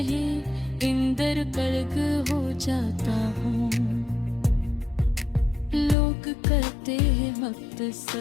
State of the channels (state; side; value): drops out; right; at 6.0 s